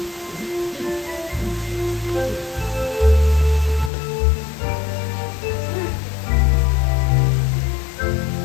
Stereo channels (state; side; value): drops out; right; at 3.9 s